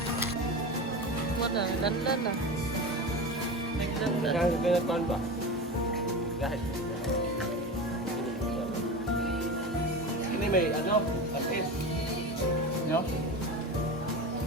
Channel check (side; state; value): both; normal; correlation 0.26